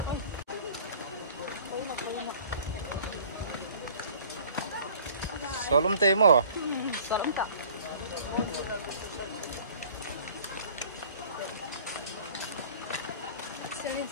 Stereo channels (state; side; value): inverted; both; correlation -0.49